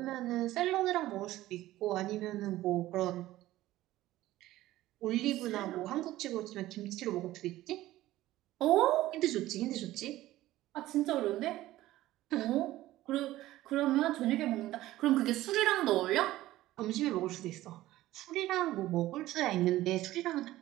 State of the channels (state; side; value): quieter; left; 15.8 dB